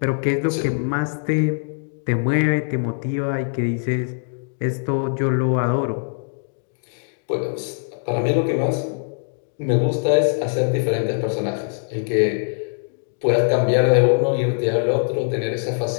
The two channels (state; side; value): silent; right; digital silence